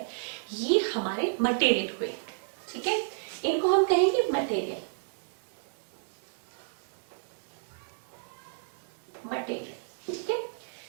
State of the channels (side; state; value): left; silent; digital silence